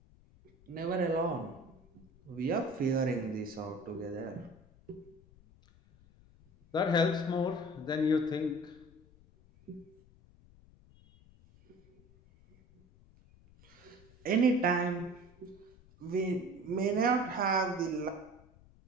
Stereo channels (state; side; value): noise; left; rumble, 26 dB below the sound